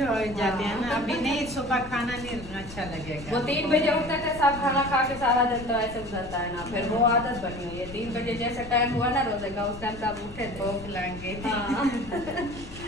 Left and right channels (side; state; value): left; noise; rumble, 15 dB below the sound